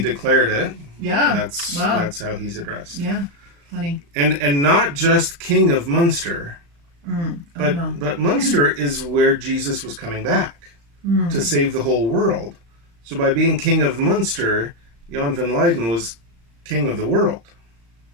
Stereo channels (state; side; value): late; left; 35 ms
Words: it, Yeah. that's Wow. that's how he's addressed. Yeah. Funny. And not just king of Munster, Oh, no. but Munster is where Jesus was coming back to save the whole world. So by being king of Munster, Jan van Leyden was king of the world.